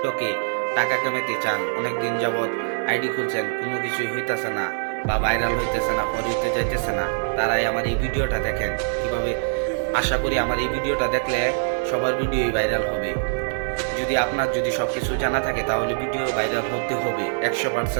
টাকা কামাতে চান, অনেক দিন যাবৎ আইডি খুলছেন, কোনো কিছুই হইতেছে না বা ভাইরাল হইতেছে না, ফর হইতে যাইতেছে না, তারাই আমার এই ভিডিওটা দেখেন কিভাবে। আশা করি আমার এই ভিডিওটা দেখলে সবার ভিডিওই ভাইরাল হবে। যদি আপনার সবকিছু জানা থাকে তাহলে ভিডিও ভাইরাল হতে হবে,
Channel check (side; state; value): left; silent; 62 dB below the other